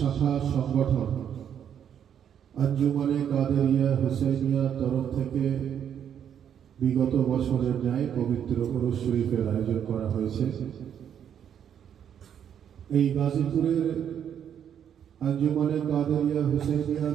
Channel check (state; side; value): quieter; left; 8.9 dB